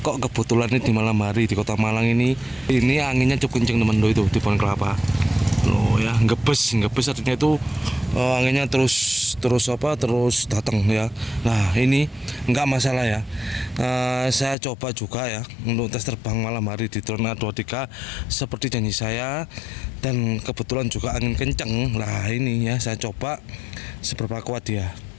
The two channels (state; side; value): drops out; right; at 14.6 s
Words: kok kebetulan ini di malam hari di Kota Malang ini anginnya cukup kenceng teman itu di pohon kelapa. Loh ya, ngebes artinya itu anginnya terus datang ya. Nah ini nggak masalah ya. Saya coba juga ya untuk tes terbang malam hari di drone A23 seperti janji saya, dan kebetulan juga angin kenceng. Lah ini ya saya coba seberapa kuat dia